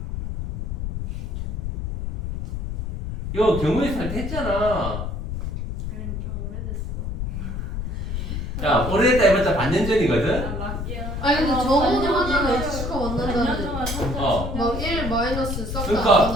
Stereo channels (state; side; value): noise; left; rumble, 4 dB below the sound